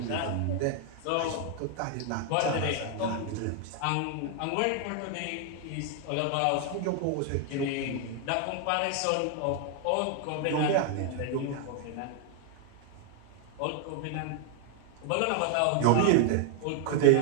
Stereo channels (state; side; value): different; both; correlation 0.00